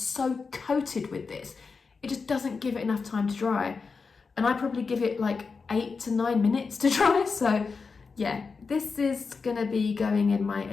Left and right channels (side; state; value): right; quieter; 4.8 dB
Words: coated with this, it just doesn't give it enough time to dry. And I probably give it like 8 to 9 minutes to dry, so yeah, this is gonna be going in my